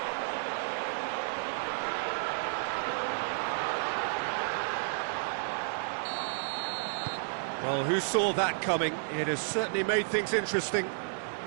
Well, who saw that coming? It has certainly made things interesting.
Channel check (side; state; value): left; silent; digital silence